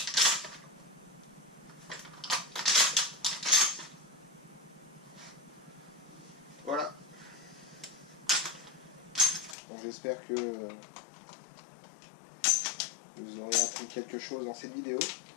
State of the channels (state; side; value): drops out; right; at 9.6 s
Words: Voilà. Bon, j'espère que vous aurez appris quelque chose dans cette vidéo.